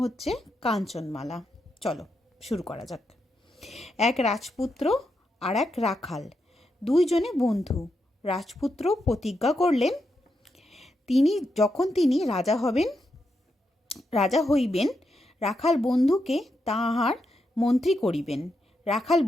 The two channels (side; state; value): both; normal; correlation 0.83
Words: হচ্ছে কাঞ্চনমালা। চলো শুরু করা যাক। এক রাজপুত্র আর এক রাখাল, দুইজনে বন্ধু। রাজপুত্র প্রতিজ্ঞা করলেন তিনি রাজা হইবেন, রাখাল বন্ধুকে তাহার মন্ত্রী করিবেন। রাখাল